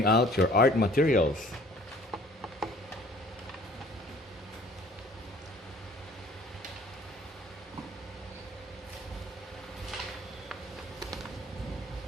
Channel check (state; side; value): normal; both; correlation 0.53